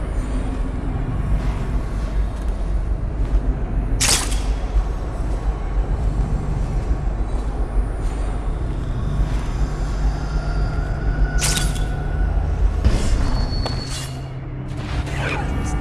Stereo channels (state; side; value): identical; both; correlation 1.00